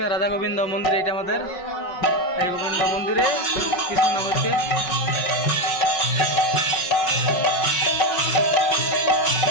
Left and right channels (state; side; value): late; right; 5.4 ms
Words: রাধা গোবিন্দ মন্দির, এটা আমাদের এই গোবিন্দ মন্দিরে কৃষ্ণ নাম হচ্ছে।